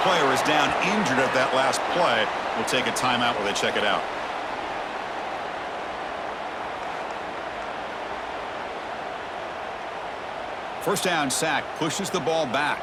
player is down injured at that last play. We'll take a timeout while they check it out. First down sack pushes the ball back.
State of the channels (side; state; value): both; identical; correlation 1.00